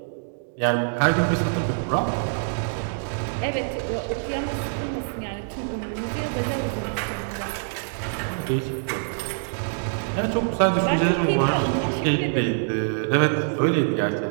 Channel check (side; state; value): left; silent; digital silence